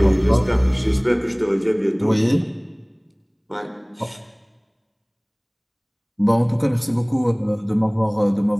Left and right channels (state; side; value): identical; both; correlation 1.00